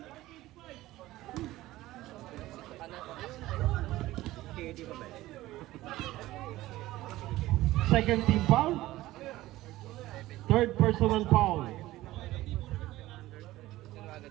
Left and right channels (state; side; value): quieter; left; 16.7 dB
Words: Second team foul. Third personal foul.